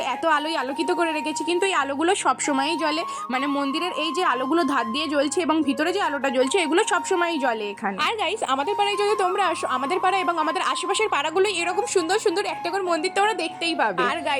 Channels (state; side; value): identical; both; correlation 1.00